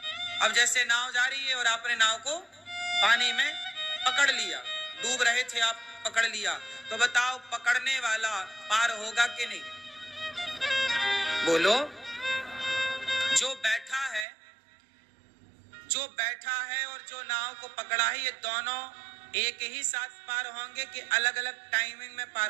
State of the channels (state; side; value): drops out; left; at 14.2 s